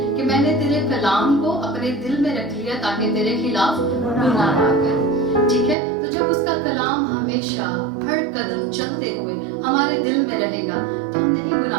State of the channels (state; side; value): drops out; left; at 5.8 s